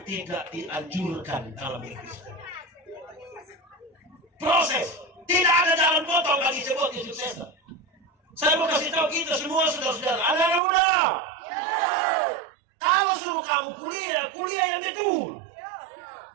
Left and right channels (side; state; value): left; drops out; at 10.6 s